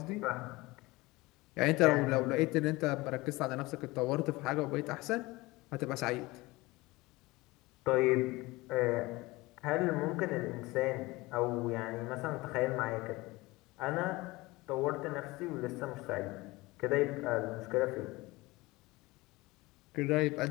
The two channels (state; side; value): quieter; right; 21.5 dB